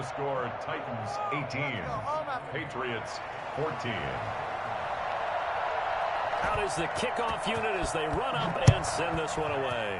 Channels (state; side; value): identical; both; correlation 1.00